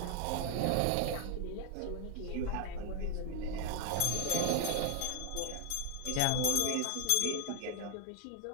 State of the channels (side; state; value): both; different; correlation 0.00